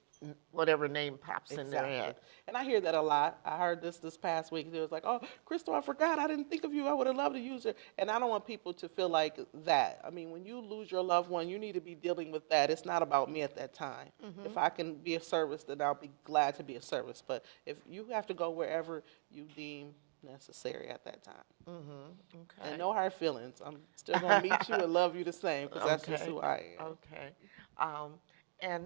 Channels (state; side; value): silent; left; digital silence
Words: whatever name pops in their head. And I hear that a lot. I heard this past week. It was like, oh, Crystal, I forgot. I didn't think of you. I would have loved to use it. And I don't want people to feel like that. I mean, when you lose your loved one, you need to be dealing with that. It's not about me at that time. If I can be of service, then I'll be glad to be of service. But if you have to go wherever you deem necessary at that time. Okay. And no hard feelings. I'm still going to meet you and love you the same because that's just who I am. Okay.